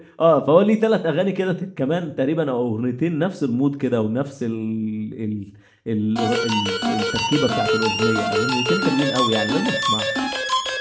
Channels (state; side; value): identical; both; correlation 1.00